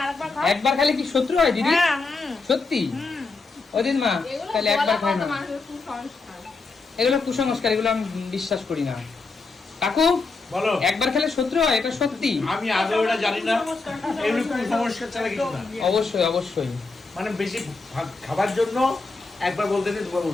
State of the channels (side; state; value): right; quieter; 3.9 dB